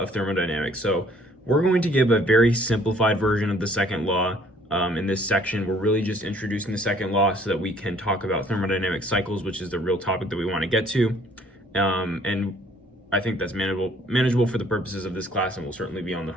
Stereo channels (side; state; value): both; normal; correlation 0.59